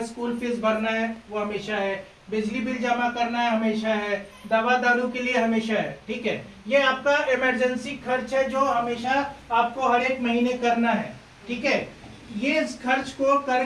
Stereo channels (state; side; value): identical; both; correlation 1.00